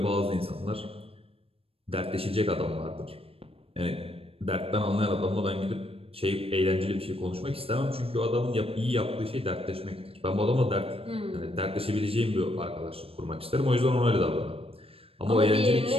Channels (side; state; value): left; late; 0.28 ms